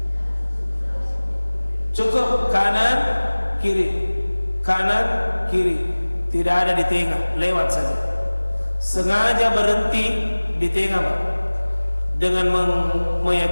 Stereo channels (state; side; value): inverted; both; correlation -1.00